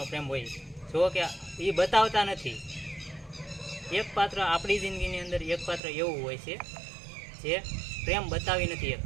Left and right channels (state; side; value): drops out; left; at 5.8 s